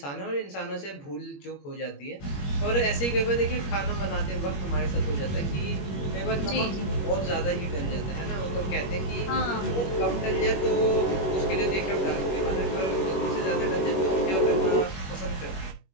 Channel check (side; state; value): right; late; 21 ms